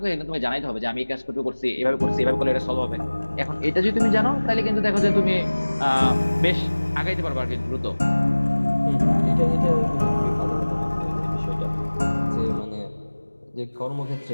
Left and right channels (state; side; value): inverted; both; correlation -1.00